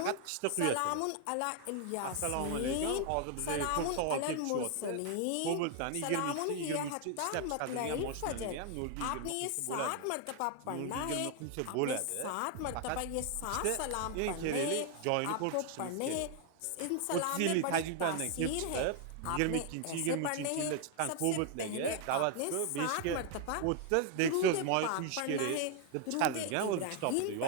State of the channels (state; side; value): different; both; correlation 0.00